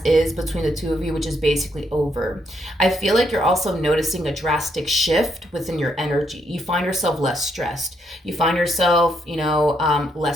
is between the two of you, which is basically over. I feel like you're also noticing a drastic shift within your energy. You find yourself less stressed. You find yourself,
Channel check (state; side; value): normal; both; correlation 0.75